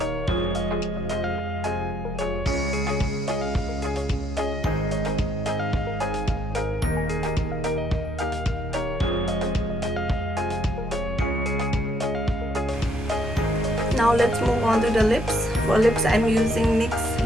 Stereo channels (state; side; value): normal; both; correlation 0.68